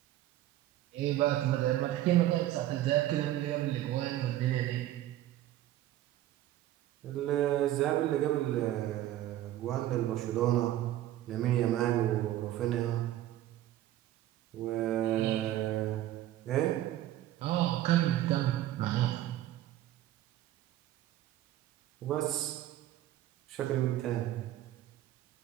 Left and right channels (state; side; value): quieter; left; 13.7 dB